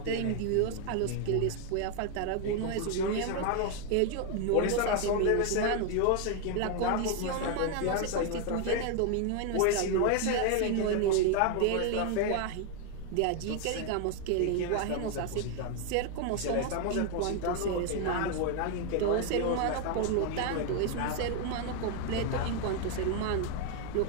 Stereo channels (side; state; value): both; different; correlation 0.00